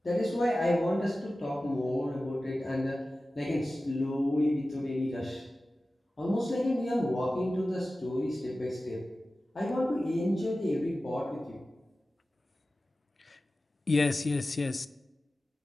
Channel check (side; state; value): both; normal; correlation 0.95